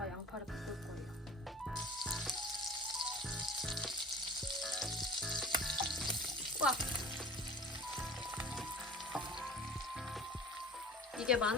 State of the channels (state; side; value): normal; both; correlation 0.42